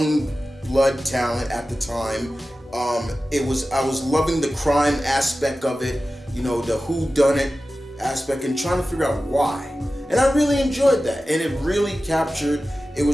blood talent at the time. I was loving the crime aspect of it, the whodunit aspect, and trying to figure out why. And I really enjoyed that, and it really captured. It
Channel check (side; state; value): both; normal; correlation 0.95